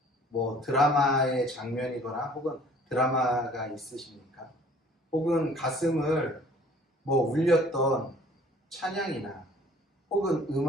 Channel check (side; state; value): both; normal; correlation 0.53